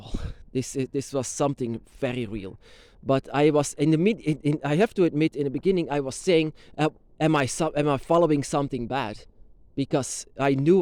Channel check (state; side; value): identical; both; correlation 1.00